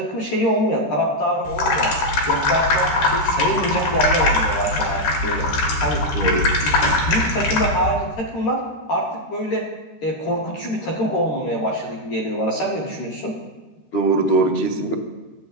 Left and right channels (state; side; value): late; right; 14 ms